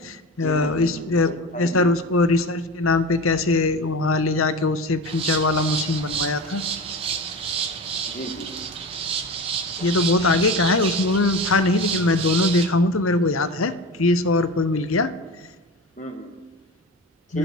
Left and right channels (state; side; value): normal; both; correlation 0.29